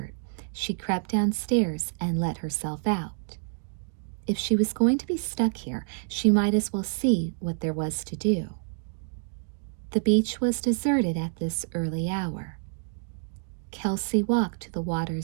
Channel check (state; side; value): silent; left; digital silence